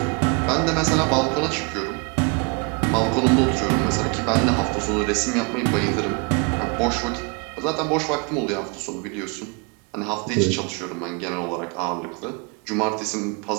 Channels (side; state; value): left; quieter; 31.2 dB